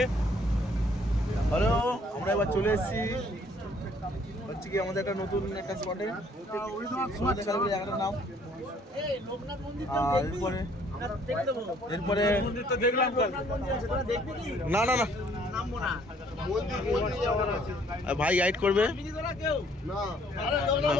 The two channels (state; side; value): normal; both; correlation 0.61